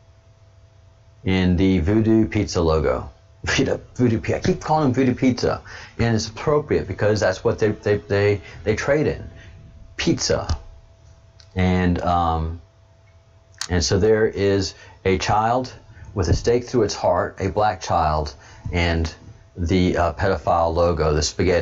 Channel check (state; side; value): identical; both; correlation 1.00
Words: in the Voodoo Pizza logo. Voodoo Pizza. I keep calling them Voodoo Pizza, and it's appropriate because that's what they trade in, pizza. And so there is a child with a stake through its heart, a black child, and the pedophile logo, the